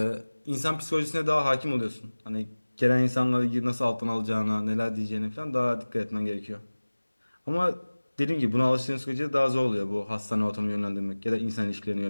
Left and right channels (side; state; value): both; inverted; correlation -1.00